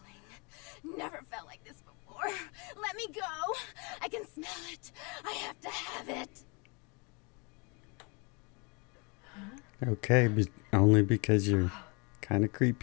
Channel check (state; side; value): quieter; right; 31.2 dB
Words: Never felt like this before. Let me go. I can smell it. I have to have it. Okay, only because you're kind of